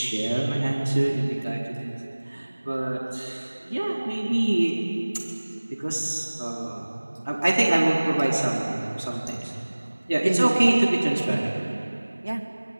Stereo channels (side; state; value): both; inverted; correlation -1.00